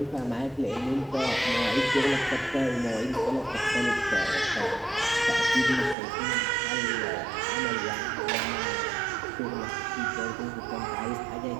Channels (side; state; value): left; drops out; at 6.0 s